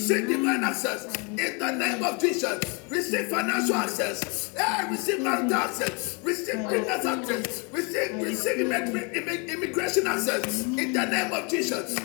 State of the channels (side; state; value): right; quieter; 32.9 dB